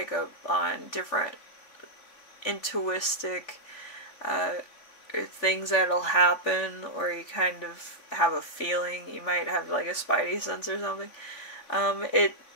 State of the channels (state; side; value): late; right; 3.4 ms